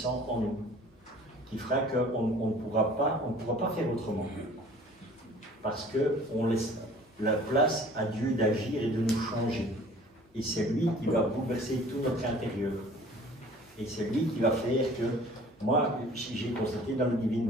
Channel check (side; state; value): both; normal; correlation 0.49